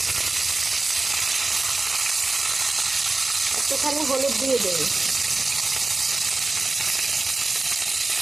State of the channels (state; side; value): quieter; left; 3.3 dB